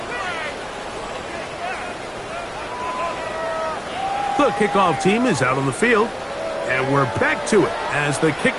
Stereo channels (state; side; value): identical; both; correlation 1.00